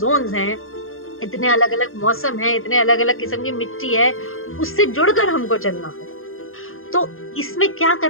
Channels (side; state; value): right; late; 0.60 ms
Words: हैं, इतने अलग अलग मौसम है, इतने अलग अलग किस्म की मिट्टी है, उससे जुड़कर हमको चलना होगा। तो इसमें क्या